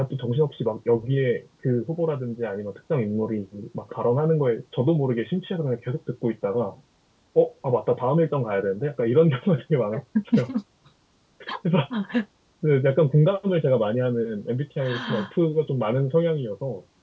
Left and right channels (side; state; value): both; identical; correlation 1.00